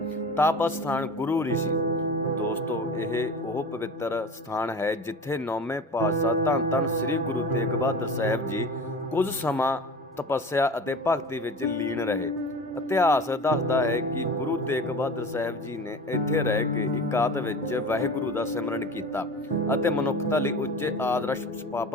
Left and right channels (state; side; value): normal; both; correlation 0.35